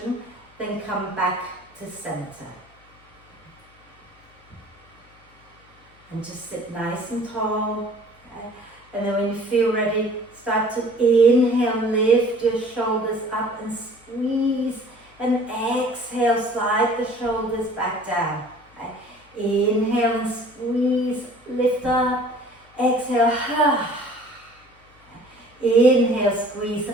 then come back to center. And just sit nice and tall. Okay? And then when you feel ready, start to inhale, lift your shoulders up and squeeze. And exhale, slide the shoulders back down. Okay? Inhale and squeeze, lift up. Exhale, inhale, squeeze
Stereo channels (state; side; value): noise; left; hum, 30 dB below the sound